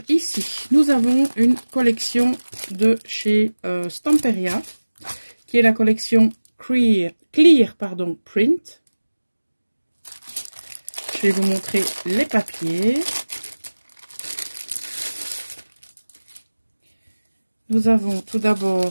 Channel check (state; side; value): inverted; both; correlation -1.00